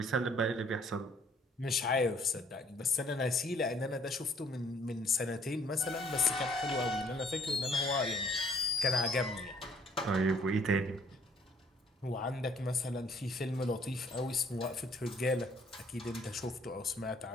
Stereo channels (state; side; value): normal; both; correlation 0.62